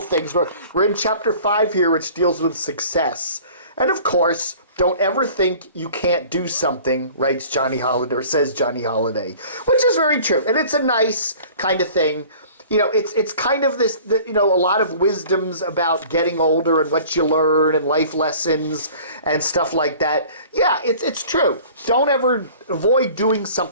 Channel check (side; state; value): both; inverted; correlation -0.46